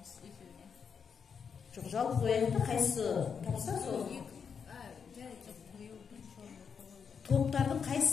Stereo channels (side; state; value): right; quieter; 6.5 dB